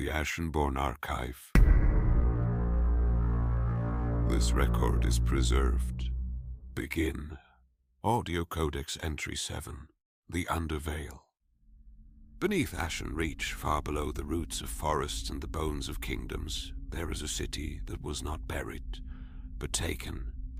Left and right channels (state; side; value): identical; both; correlation 1.00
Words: Ashenborne Archive. This record is preserved. Begin. Audio Codex Entry 7, the UnderVeil. Beneath AshenReach, far below the roots of forests and the bones of kingdoms, there is a city that was not buried, but taken,